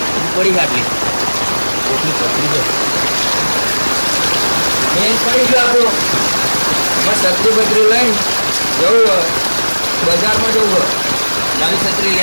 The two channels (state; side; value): inverted; both; correlation -1.00